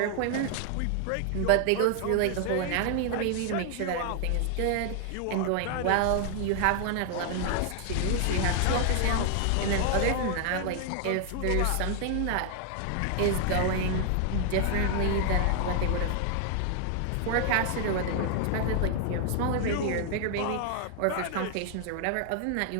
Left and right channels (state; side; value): different; both; correlation 0.00